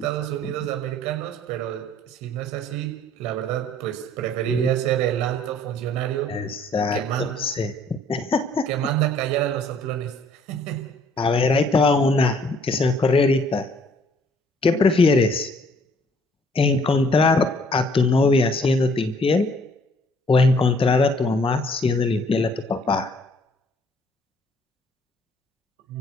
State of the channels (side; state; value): both; normal; correlation 0.60